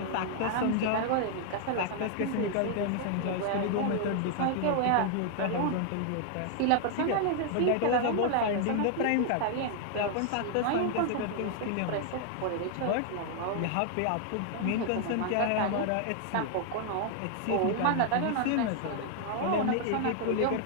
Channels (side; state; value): both; different; correlation 0.00